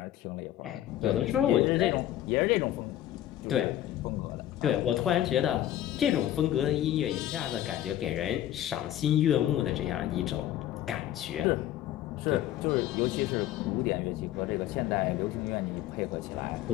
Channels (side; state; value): right; quieter; 12.5 dB